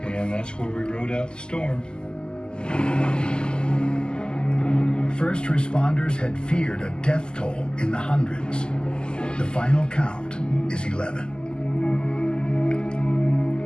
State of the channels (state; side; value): late; right; 0.047 ms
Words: And that's where we rode out the storm. First responders had feared a death toll in the hundreds. The final count is 11.